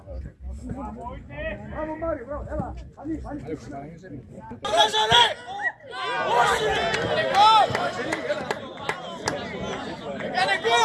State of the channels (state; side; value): identical; both; correlation 1.00